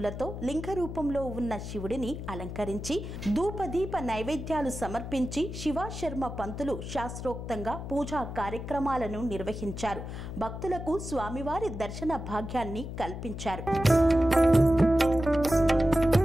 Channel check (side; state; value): left; noise; hum, 8 dB below the sound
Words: లింగ రూపంలో ఉన్న శివుడిని అలంకరించి ధూపదీప నైవేద్యాలు సమర్పించి శివాశర్మ పంతులు శాస్త్రోక్తంగా పూజా కార్యక్రమాలను నిర్వహించారు. భక్తులకు స్వామివారి దర్శన భాగ్యాన్ని కల్పించారు.